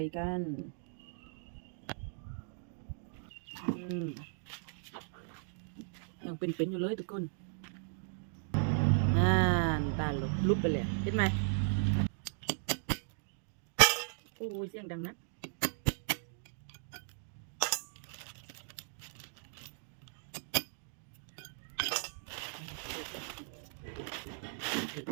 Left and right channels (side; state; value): left; silent; digital silence